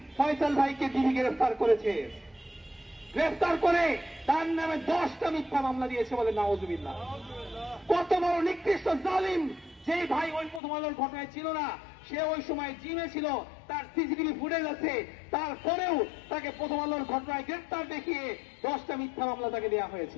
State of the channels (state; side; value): drops out; right; at 10.6 s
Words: ফয়সাল ভাইকে ডিবি গ্রেফতার করেছে। গ্রেফতার করে তার নামে 10টা মিথ্যা মামলা দিয়েছে বলে নাউজুবিল্লাহ। কত বড় নিকৃষ্ট জালিম! যে ভাই ওই প্রথম আলোর ঘটনায় ছিল না, সে ওই সময় জিমে ছিল, তার সিসিটিভি ফুটেজ আছে, তারপরেও তাকে প্রথম আলোর ঘটনায় গ্রেফতার দেখিয়ে 10টা মিথ্যা মামলা তাকে দেওয়া